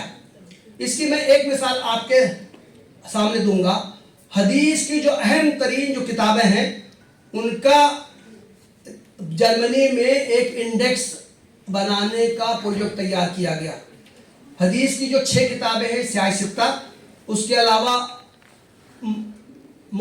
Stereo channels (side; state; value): both; identical; correlation 1.00